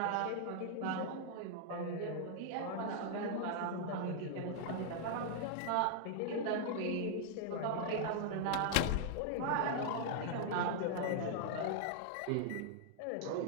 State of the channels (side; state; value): both; different; correlation -0.01